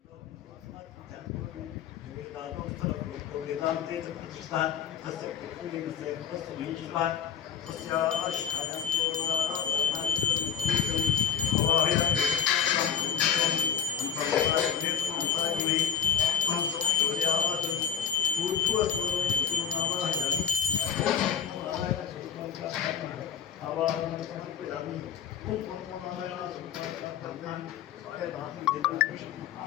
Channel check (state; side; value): quieter; right; 8.2 dB